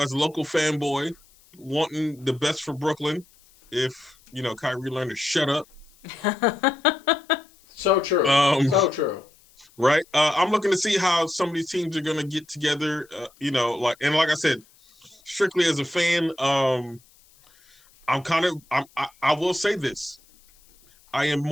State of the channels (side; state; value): left; noise; hiss, 30 dB below the sound